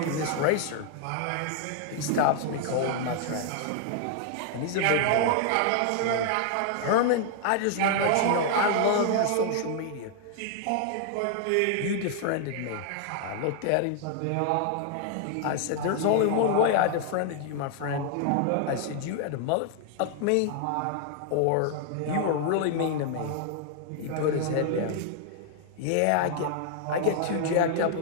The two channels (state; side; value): different; both; correlation 0.00